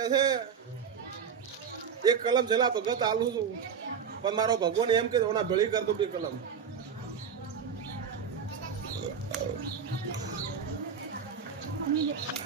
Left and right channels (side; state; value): left; quieter; 6.8 dB